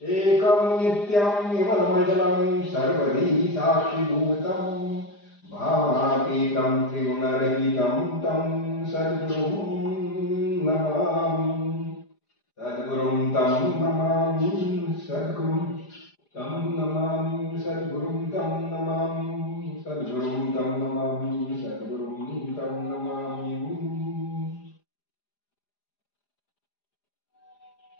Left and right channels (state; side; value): late; right; 4.9 ms